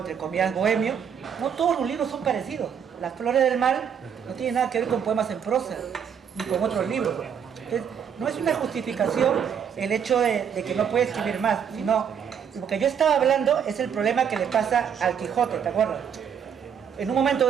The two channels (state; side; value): quieter; left; 7.7 dB